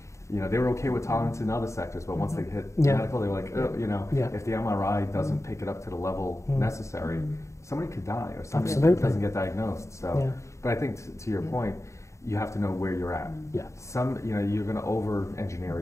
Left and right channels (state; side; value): late; right; 0.14 ms